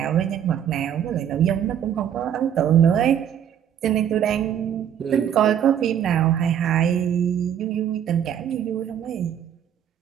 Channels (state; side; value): quieter; left; 9.4 dB